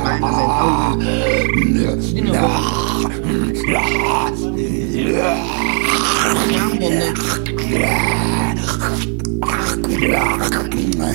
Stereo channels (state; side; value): quieter; left; 36.9 dB